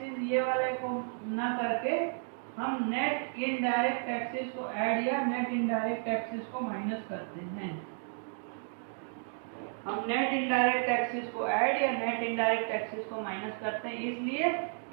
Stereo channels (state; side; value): silent; left; 56 dB below the other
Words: ये वाले को ना करके हम नेट इनडायरेक्ट टैक्सेस को ऐड या नेट इनडायरेक्ट टैक्सेस को माइनस करते हैं। हम नेट इनडायरेक्ट टैक्सेस को ऐड या नेट इनडायरेक्ट टैक्सेस को माइनस करते हैं, इसलिए